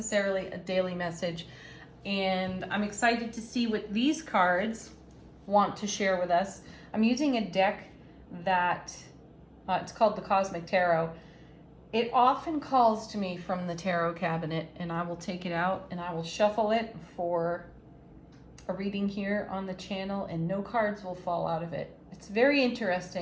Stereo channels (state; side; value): identical; both; correlation 1.00